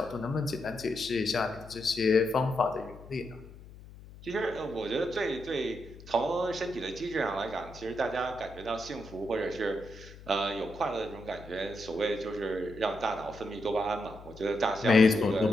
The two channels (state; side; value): noise; left; hum, 18 dB below the sound